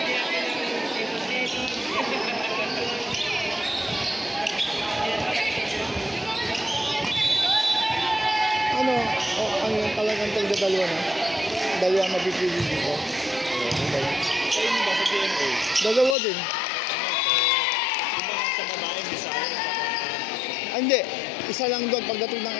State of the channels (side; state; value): right; drops out; at 16.2 s